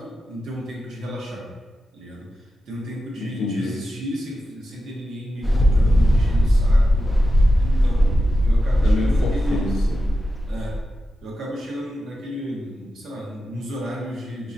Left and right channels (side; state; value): both; normal; correlation 0.91